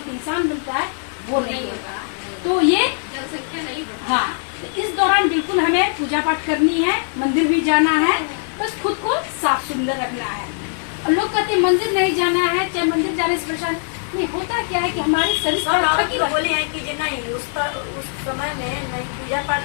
इंसान बनता है, वो नहीं होगा। तो ये जनसंख्या नहीं बढ़ती। हाँ, इस दौरान बिल्कुल हमें पूजा पाठ करनी है, मंदिर भी जाना है, बस खुद को साफ सुंदर रखना है। और लोग कहते हैं मंदिर नहीं जाना है, चाहे मंदिर जाने से परेशान नहीं होता। क्या है कि हमारे शरीर बोले हैं कि जो नहीं उस समय में नहीं पूजा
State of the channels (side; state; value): right; silent; 60 dB below the other